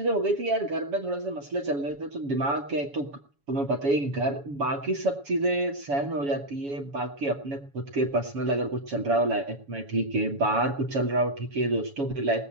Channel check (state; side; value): late; left; 7.1 ms